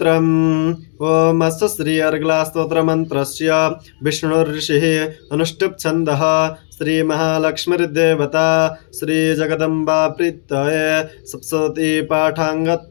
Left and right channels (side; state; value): right; silent; digital silence